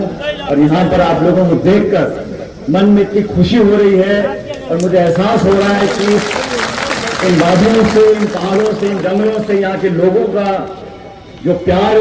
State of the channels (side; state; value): both; identical; correlation 1.00